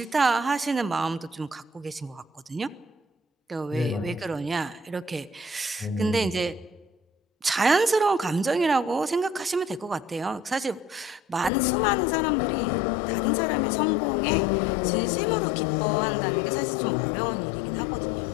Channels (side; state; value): right; drops out; at 11.5 s